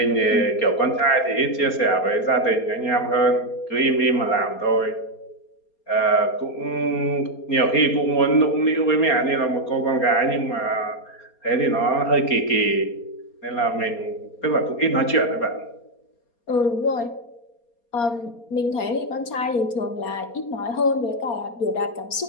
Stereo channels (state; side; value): late; right; 4.3 ms